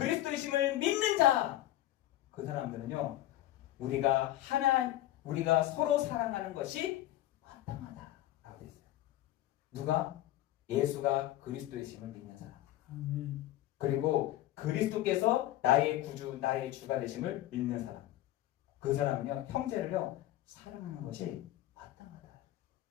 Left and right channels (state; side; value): quieter; right; 14.6 dB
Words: 믿는 자, 그 사람들은요, 우리가 서로 사랑하는 것이 마땅하다라고 되어 있어요. 누가? 예수가 그리스도이심을 믿는 사람. 아멘. 그리고 그리스도께서 나의 구주, 나의 주가 되심을 믿는 사람. 그 사람은요, 형제를요, 사랑하는 것이 마땅하다.